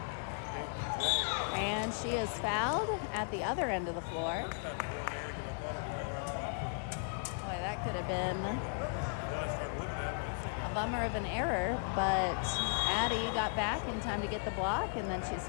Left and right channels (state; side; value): silent; right; digital silence